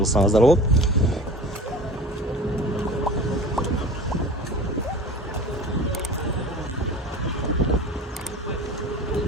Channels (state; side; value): normal; both; correlation 0.37